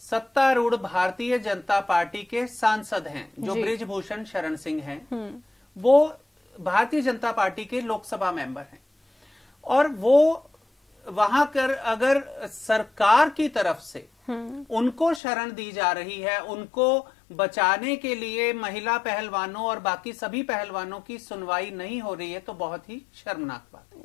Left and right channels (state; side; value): drops out; right; at 15.2 s